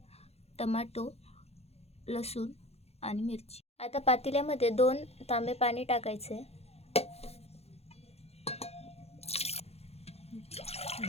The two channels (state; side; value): late; right; 0.30 ms